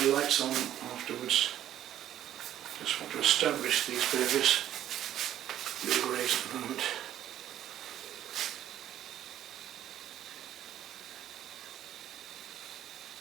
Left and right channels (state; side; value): quieter; left; 11.7 dB